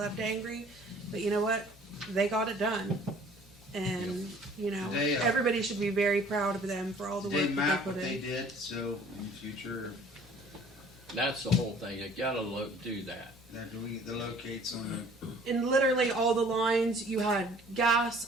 angry, but you know what? They got it done. And you know, They, everybody should be very proud of them for all the They work that map they what put they in. did, so in the future, That's the whole thing. You gotta do that. the locates on the And literally all the lines, you had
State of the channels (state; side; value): normal; both; correlation 0.53